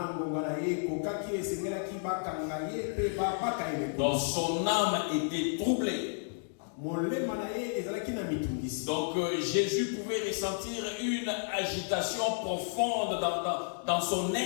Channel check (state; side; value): silent; right; digital silence